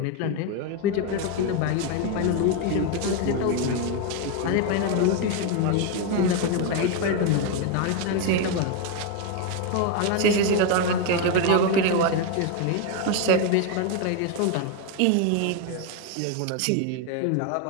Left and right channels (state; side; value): different; both; correlation 0.02